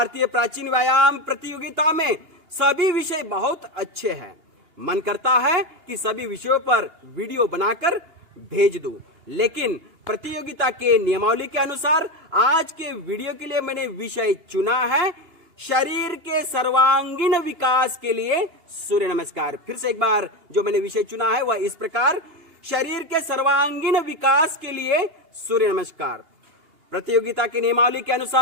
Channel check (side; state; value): left; late; 2.8 ms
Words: प्राचीन व्यायाम प्रतियोगिता में सभी विषय बहुत अच्छे हैं। मन करता है कि सभी विषयों पर वीडियो बनाकर भेज दूं, लेकिन प्रतियोगिता के नियमावली के अनुसार आज के वीडियो के लिए मैंने विषय चुना है शरीर के सर्वांगीण विकास के लिए सूर्य नमस्कार। फिर से एक बार जो मैंने विषय चुना है वह इस प्रकार, शरीर के सर्वांगीण विकास के लिए सूर्य नमस्कार। प्रतियोगिता के नियमावली के